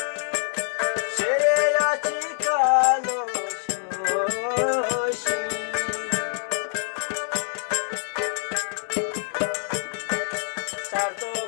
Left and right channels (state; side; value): silent; right; 61 dB below the other